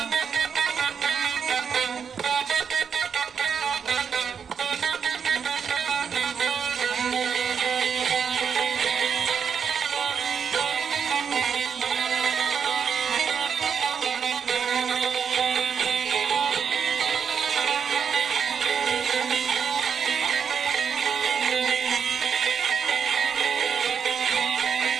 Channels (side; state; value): left; quieter; 6.9 dB